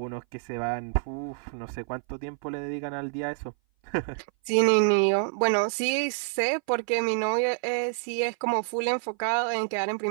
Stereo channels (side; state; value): left; silent; 58 dB below the other